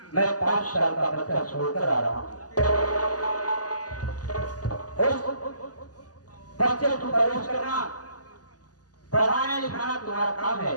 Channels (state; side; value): late; right; 0.68 ms